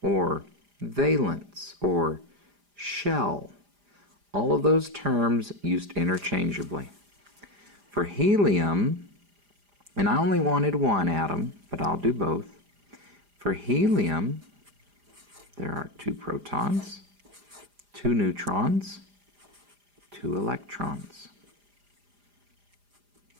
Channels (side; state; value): left; late; 4.9 ms